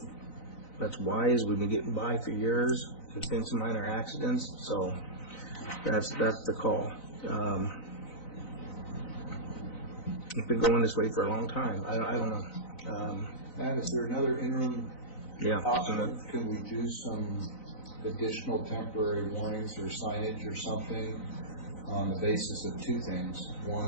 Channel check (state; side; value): late; right; 4.0 ms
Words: That's wise. We've been getting by for years. There's been some minor accidents, so that's the call. It's been going this way for a long time. I don't know. Matt, is there another interim option? Yeah. Can we do some additional temporary warnings or signage or something on the basis of two things?